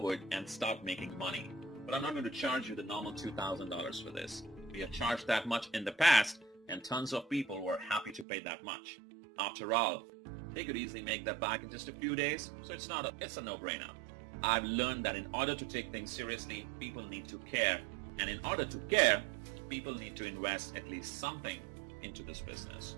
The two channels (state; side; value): drops out; left; at 8.2 s